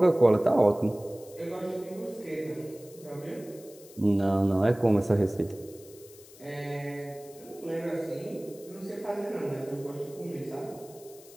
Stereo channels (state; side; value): noise; left; hiss, 22 dB below the sound